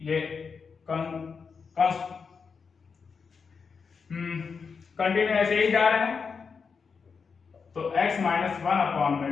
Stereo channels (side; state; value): right; quieter; 5.5 dB